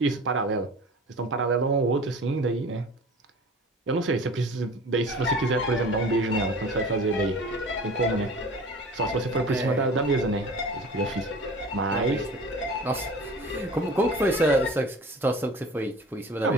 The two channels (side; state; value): both; normal; correlation 0.40